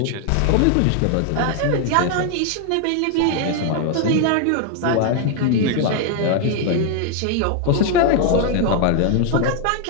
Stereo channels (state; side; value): different; both; correlation 0.00